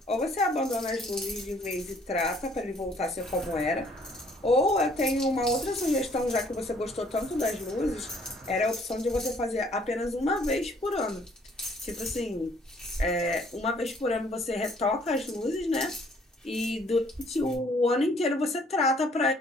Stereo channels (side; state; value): both; normal; correlation 0.61